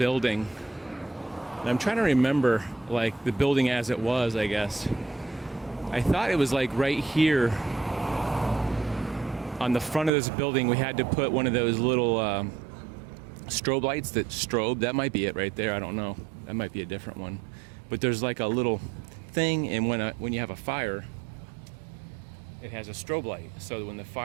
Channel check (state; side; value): drops out; left; at 10.1 s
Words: And I'm trying to remember, like, the building as it was, I guess. I thought it was like right here on the front of this building. We had to put one of those little strobe lights that strobe. That might be it right there. I don't know. That might be a different one. But there's like a little thing, and when you have a fire, it has a strobe light. So when